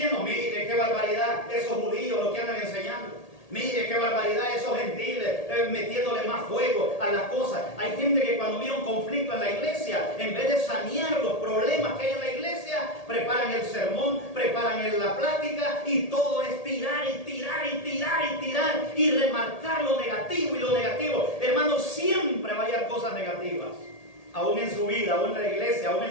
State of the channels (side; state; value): right; late; 1.8 ms